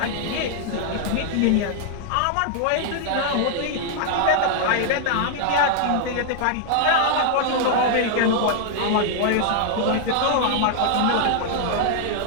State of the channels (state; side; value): different; both; correlation -0.01